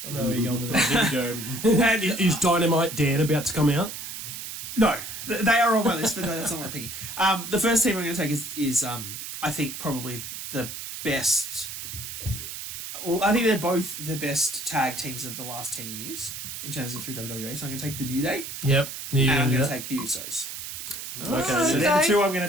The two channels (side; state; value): right; noise; hiss, 8 dB below the sound